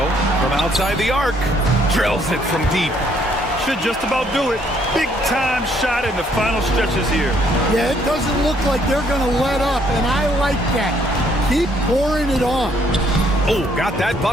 from outside the arc. Drills it from deep. Should just about do it. Big time shot in the final stretches here. Yeah, it doesn't look like they're going to let up, and I like that. Keep pouring it on. Oh, got that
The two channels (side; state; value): both; normal; correlation 0.67